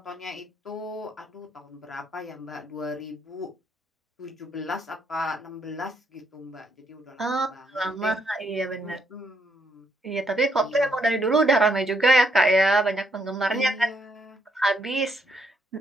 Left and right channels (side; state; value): both; normal; correlation 0.74